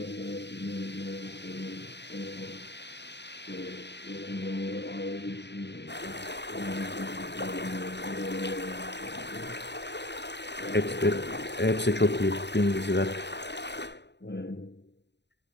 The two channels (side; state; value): right; late; 0.50 ms